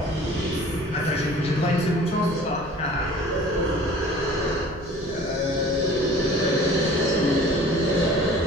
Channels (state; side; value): noise; right; hum, 17 dB below the sound